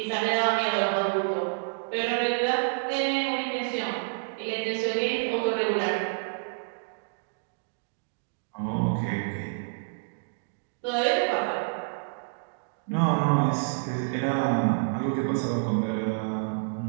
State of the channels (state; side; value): silent; left; digital silence